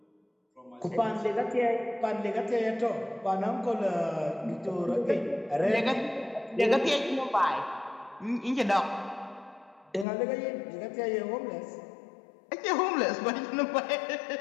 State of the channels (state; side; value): drops out; right; at 10.1 s